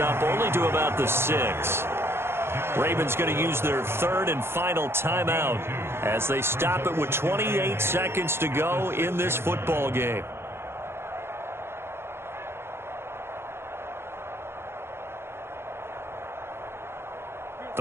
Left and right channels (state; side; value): late; left; 0.12 ms